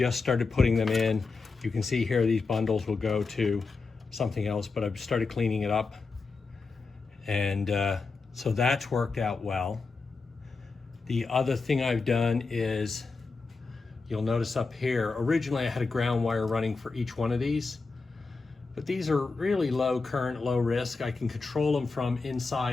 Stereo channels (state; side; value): quieter; right; 4.2 dB